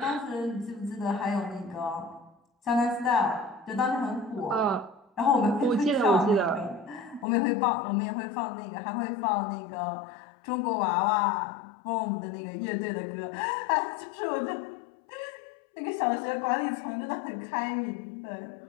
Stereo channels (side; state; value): right; drops out; at 7.2 s